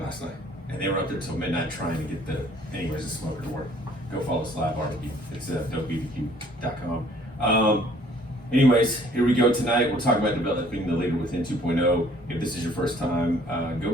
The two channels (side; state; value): both; normal; correlation 0.58